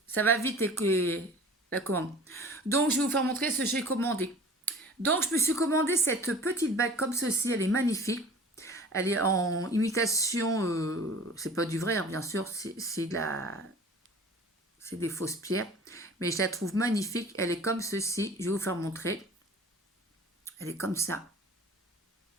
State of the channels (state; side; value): normal; both; correlation 0.44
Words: Ça va vite et que la commande. Donc, je vais vous faire montrer ce que j'ai commandé. Donc, je me suis commandé cette petite bague comme ceci. Elle est magnifique. Elle est en imitation, c'est pas du vrai, hein, bien sûr, c'est des fausses pierres. Mais je la trouve magnifique. Elle est comme ceci. Je vais vous faire montrer. Elle est comme ça.